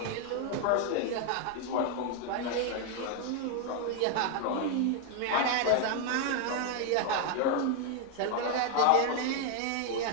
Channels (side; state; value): both; different; correlation 0.00